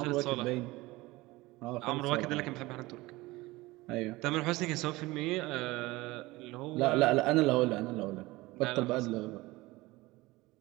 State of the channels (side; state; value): left; quieter; 20.4 dB